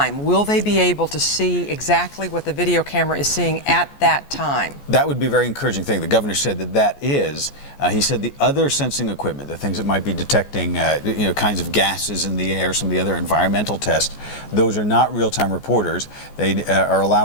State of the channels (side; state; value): right; late; 14 ms